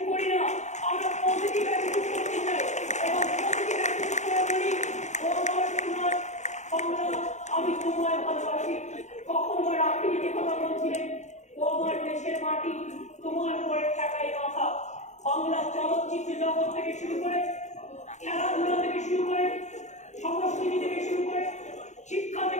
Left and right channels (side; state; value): right; late; 0.34 ms